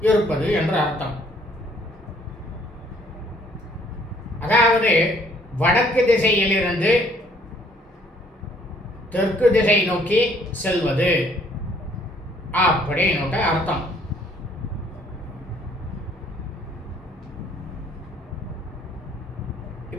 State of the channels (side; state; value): both; normal; correlation 0.63